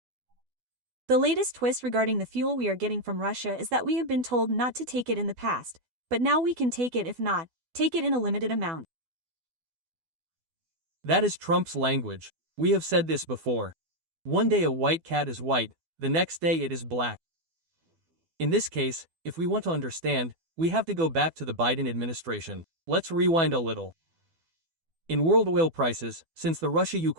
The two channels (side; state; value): left; late; 12 ms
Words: The latest twist regarding the fuel we are getting from Russia is that we have been told not to take it in the past, but now we can take it, if not, take it in a limited amount. That is Trump's language. We have said this before. One day a white cat is white, the next day it is black. In this case, if we want to understand, we have to go back to the Biden administration. Let's rewind a little. In world oil prices, since the